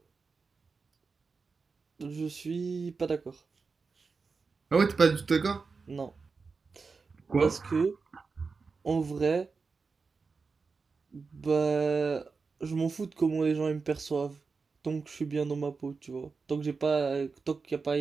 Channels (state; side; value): quieter; left; 4.7 dB